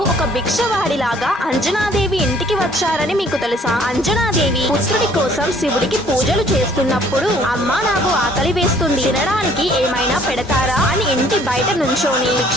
ఒక భిక్షవాడిలాగా అంజనాదేవి ఇంటికి వచ్చారని మీకు తెలుసా? అంజనాదేవి పుత్రుడి కోసం శివుడికి పూజలు చేస్తున్నప్పుడు అమ్మా నాకు ఆకలి వేస్తుంది, తినడానికి ఏమైనా పెడతారా అని ఇంటి బయట నుంచోని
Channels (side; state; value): both; normal; correlation 0.58